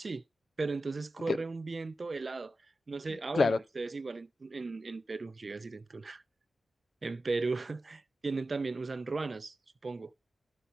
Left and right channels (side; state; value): both; normal; correlation 0.92